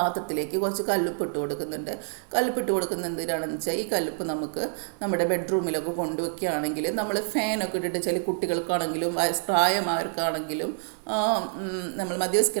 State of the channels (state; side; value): silent; left; 60 dB below the other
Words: കുറച്ച് കല്ലുപ്പ് ഇട്ട് കൊടുക്കുന്നുണ്ട്. കല്ലുപ്പ് ഇട്ട് കൊടുക്കുന്നത് എന്തിനാണെന്ന് വെച്ചാൽ ഈ കല്ലുപ്പ് നമുക്ക് നമ്മുടെ ബെഡ്റൂമിലൊക്കെ കൊണ്ടുവയ്ക്കുകയാണെങ്കിൽ നമ്മൾ ഫാനൊക്കെ ഇട്ടിട്ട് ചില കുട്ടികൾക്കാണെങ്കിലും പ്രായമായവർക്കാണെങ്കിലും നമ്മൾ